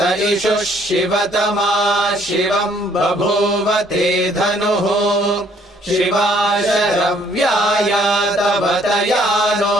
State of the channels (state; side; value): normal; both; correlation 0.63